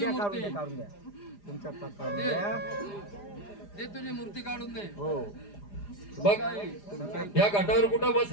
मूर्ती. दे तुझी मूर्ती काढून दे. बघ आई, या घाटावर कुठं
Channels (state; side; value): late; right; 4.9 ms